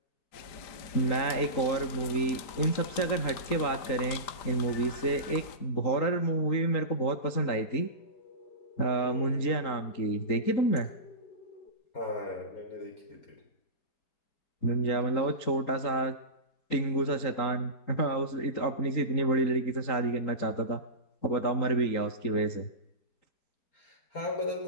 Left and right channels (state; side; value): late; right; 3.9 ms